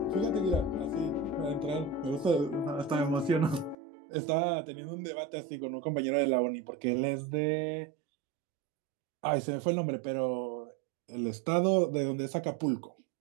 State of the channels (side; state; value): left; drops out; at 3.8 s